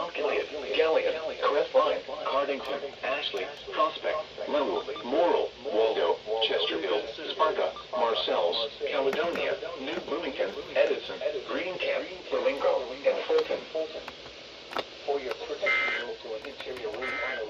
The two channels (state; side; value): identical; both; correlation 1.00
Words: Gilead, Galleon, Crestline, Cardington, Ashley, Prospect, Lowell, Morrill, Waldo, Chesterfield, Sparta, Marcells, Caledonia, New Bloomington, Edison, Greencamp, Flamingo, and Fulton. For your protection, move to an interior room on the